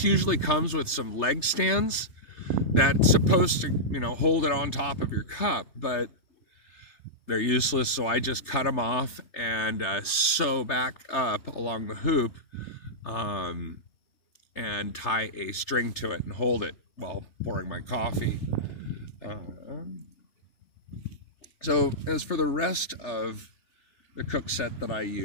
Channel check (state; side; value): late; right; 3.3 ms